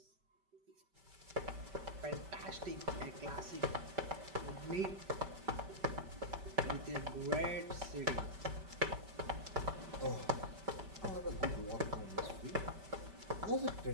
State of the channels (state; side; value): late; left; 5.2 ms